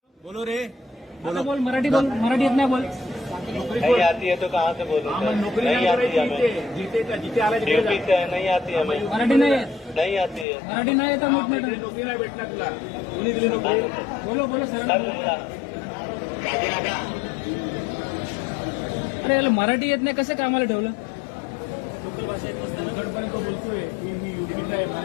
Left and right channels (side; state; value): right; drops out; at 10.5 s